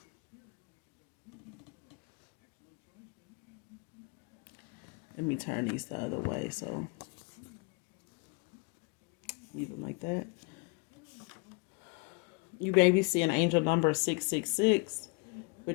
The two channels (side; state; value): right; quieter; 30.7 dB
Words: let me turn these the other way. So leave them like that. You baby see an angel number 666,